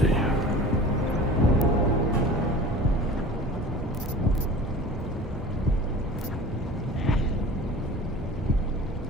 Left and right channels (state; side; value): normal; both; correlation 0.40